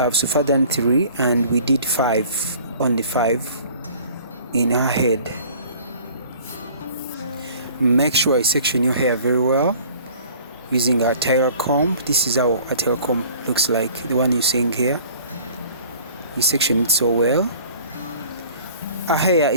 so far done 3 and we did 5, only 5 in our head. Make sure I section your hair very well using a tailor comb. This is how a tailor comb looks like, the one you're seeing here. You section it so well. Our hair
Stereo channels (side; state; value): both; inverted; correlation -0.49